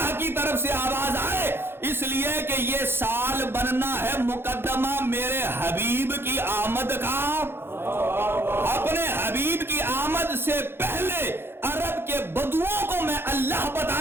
کی طرف سے آواز آئے، اس لیے کہ یہ سال بننا ہے مقدمہ میرے حبیب کی آمد کا۔ اپنے حبیب کی آمد سے پہلے عرب کے بدوؤں کو میں اللہ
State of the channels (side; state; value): left; late; 0.11 ms